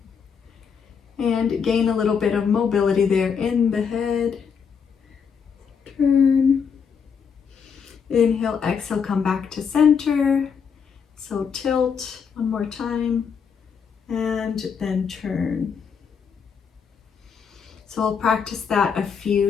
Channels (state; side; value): quieter; right; 6.5 dB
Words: and gain a little bit of mobility there in the head. Turn. Inhale, exhale, come back to center. So tilt one more time and then turn. So I'll practice that a